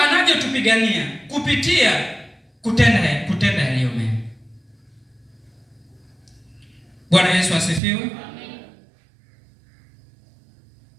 kupitia kutenda yaliyo mema. Bwana Yesu asifiwe. Amen.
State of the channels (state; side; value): drops out; left; at 7.8 s